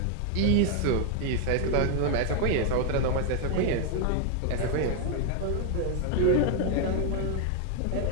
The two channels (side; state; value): both; different; correlation 0.00